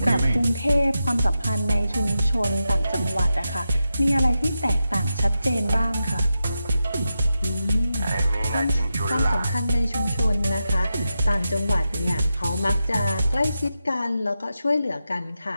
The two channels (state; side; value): inverted; both; correlation -0.89